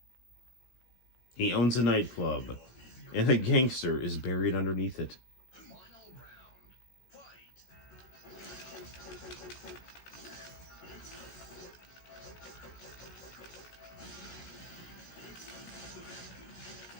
He owns a nightclub, and a gangster is buried underneath it.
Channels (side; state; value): right; late; 16 ms